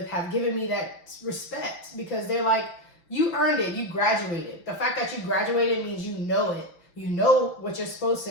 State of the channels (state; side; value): late; right; 5.9 ms